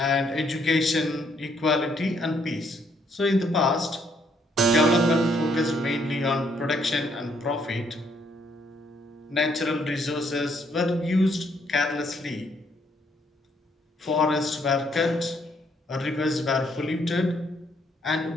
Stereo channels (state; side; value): normal; both; correlation 0.70